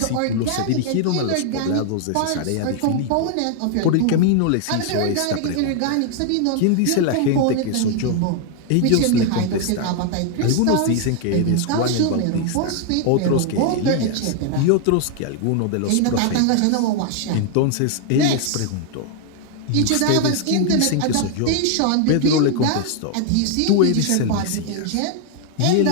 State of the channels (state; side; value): different; both; correlation 0.00